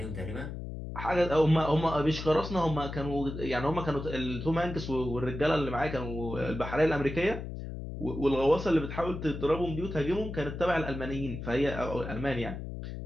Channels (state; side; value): noise; left; hum, 7 dB below the sound